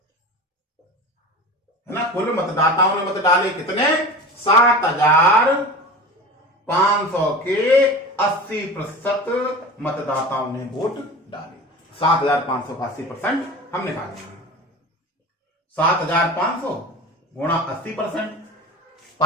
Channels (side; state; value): both; normal; correlation 0.33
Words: है ना, कुल मतदाताओं ने मत डाले कितने, 7,500 के 80% मतदाताओं ने वोट डाले। 7,500 का 80% हम निकालेंगे, 7,500 गुणा 80%,